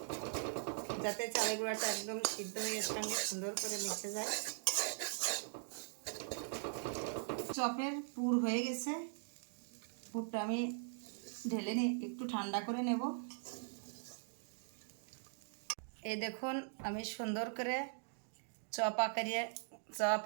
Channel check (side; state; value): left; silent; digital silence